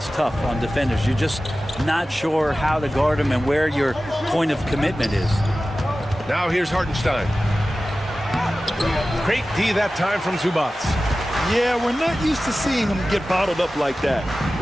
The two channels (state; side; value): normal; both; correlation 0.95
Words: tough on defenders. You're just not sure how to guard him and where your point of commitment is. Now here's Hartenstein. Great D that time from Zubac. Yeah, we're not used to seeing him get bottled up like that.